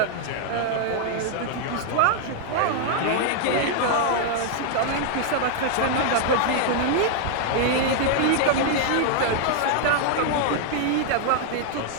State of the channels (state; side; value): different; both; correlation -0.01